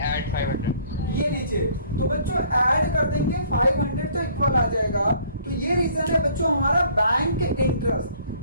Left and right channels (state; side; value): inverted; both; correlation -0.57